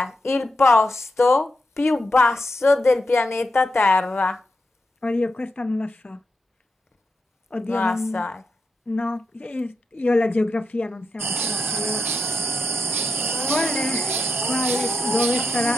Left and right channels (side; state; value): both; normal; correlation 0.87